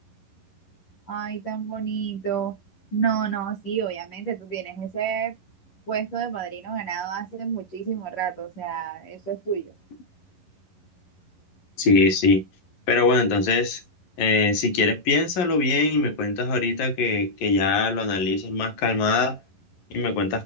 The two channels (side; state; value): right; late; 11 ms